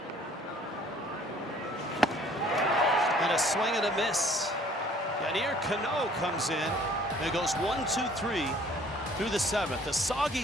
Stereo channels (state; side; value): normal; both; correlation 0.56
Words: And a swing and a miss. Yadier Cano comes in and it goes 1, 2, 3 through the 7th. A